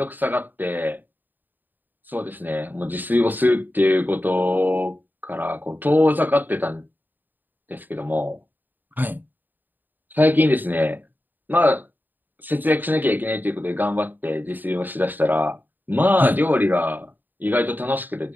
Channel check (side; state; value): left; late; 0.089 ms